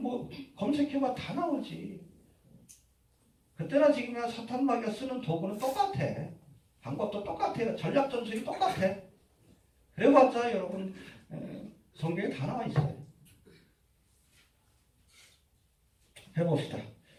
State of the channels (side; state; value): both; identical; correlation 1.00